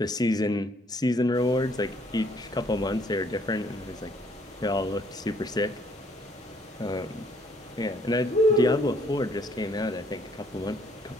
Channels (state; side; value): normal; both; correlation 0.64